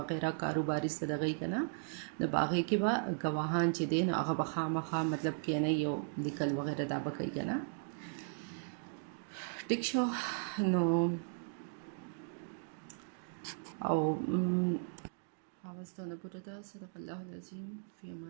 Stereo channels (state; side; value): silent; left; digital silence